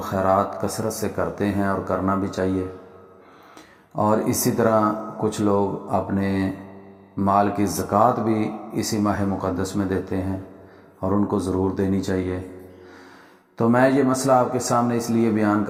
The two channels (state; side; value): identical; both; correlation 1.00